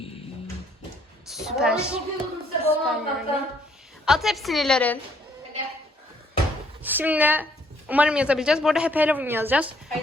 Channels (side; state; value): both; normal; correlation 0.65